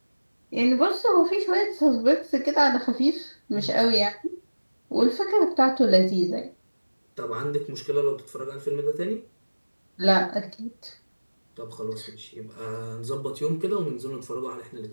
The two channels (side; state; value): both; inverted; correlation -1.00